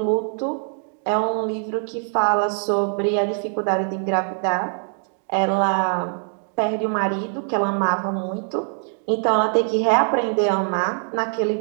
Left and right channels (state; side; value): silent; left; 55 dB below the other